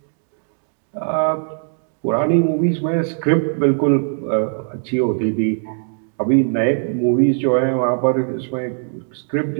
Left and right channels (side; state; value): left; silent; digital silence